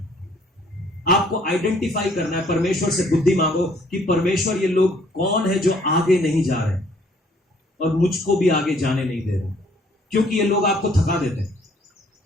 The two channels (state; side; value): normal; both; correlation 0.62